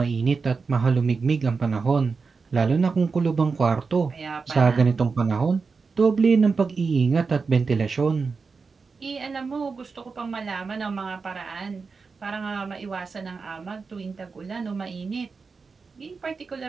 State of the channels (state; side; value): quieter; left; 4.8 dB